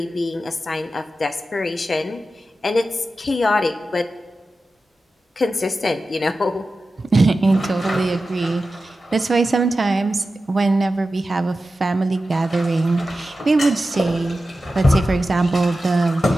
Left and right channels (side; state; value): both; normal; correlation 0.93